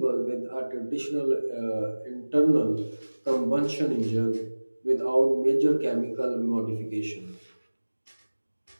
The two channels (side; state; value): both; inverted; correlation -1.00